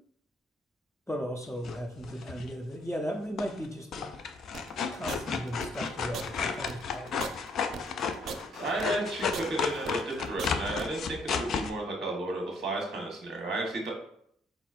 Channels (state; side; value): normal; both; correlation 0.66